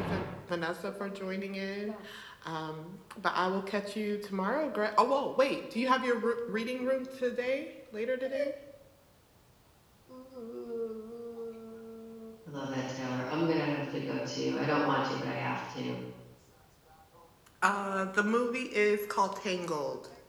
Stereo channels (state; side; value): identical; both; correlation 1.00